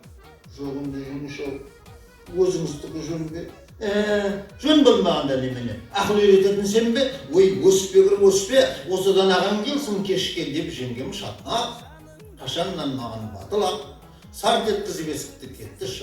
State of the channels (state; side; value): identical; both; correlation 1.00